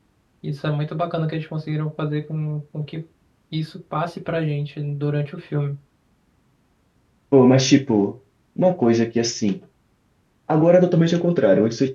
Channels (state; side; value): identical; both; correlation 1.00